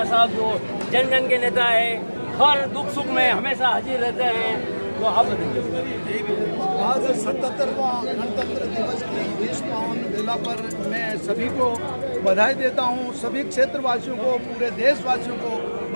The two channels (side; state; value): both; inverted; correlation -1.00